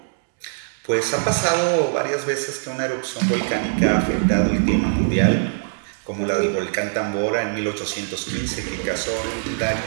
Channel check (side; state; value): left; silent; digital silence